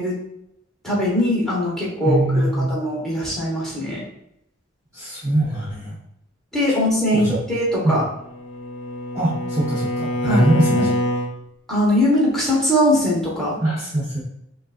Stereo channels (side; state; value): both; normal; correlation 0.53